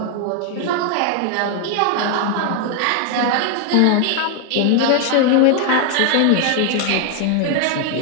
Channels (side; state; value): both; different; correlation 0.00